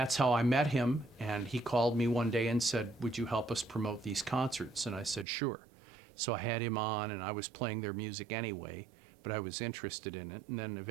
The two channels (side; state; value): left; drops out; at 5.2 s